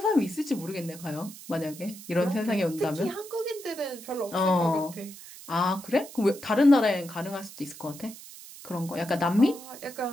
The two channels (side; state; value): right; noise; hiss, 16 dB below the sound